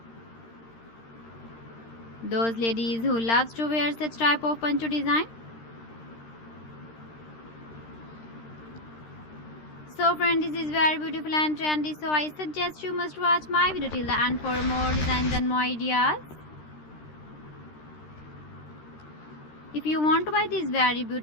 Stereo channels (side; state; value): right; late; 13 ms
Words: Those ladies who loves to wear such type of poncho design. So friends, this is very beautiful and trendy, so I suggest you must watch my video till the end for more designs and more ideas. If you want to buy these very